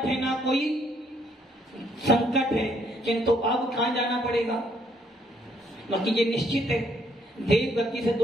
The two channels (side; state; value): both; normal; correlation 0.69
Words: है ना कोई संकट है, किंतु अब कहां जाना पड़ेगा? बाकी ये निश्चित है, देव गति से